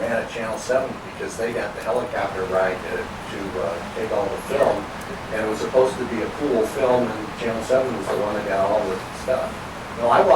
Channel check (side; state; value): both; identical; correlation 1.00